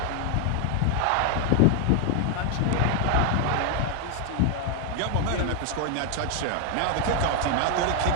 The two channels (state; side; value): different; both; correlation 0.01